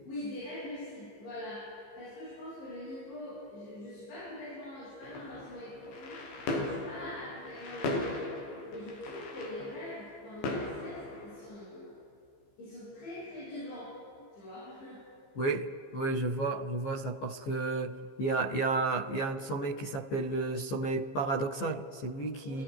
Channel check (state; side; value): late; right; 15 ms